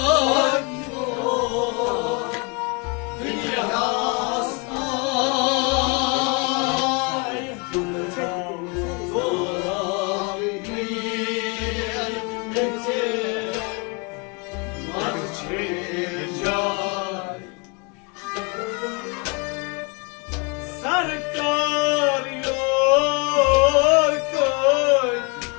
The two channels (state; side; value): quieter; right; 31.2 dB